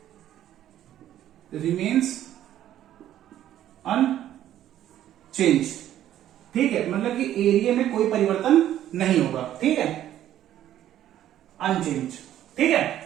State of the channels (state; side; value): quieter; left; 12.0 dB